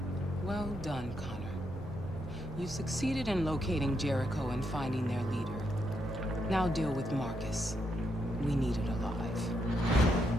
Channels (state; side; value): normal; both; correlation 0.80